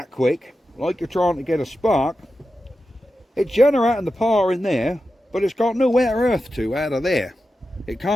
quick, like you're trying to get a spark, it's generating the power in there, but it's got nowhere earth to out of there. It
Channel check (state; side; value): normal; both; correlation 0.91